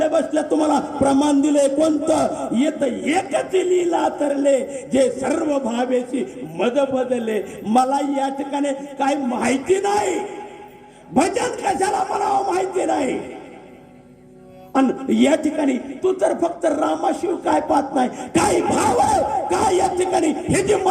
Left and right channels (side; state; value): both; identical; correlation 1.00